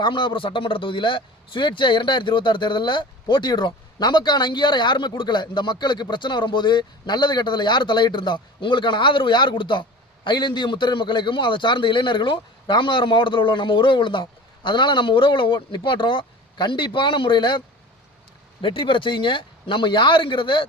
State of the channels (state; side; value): normal; both; correlation 0.38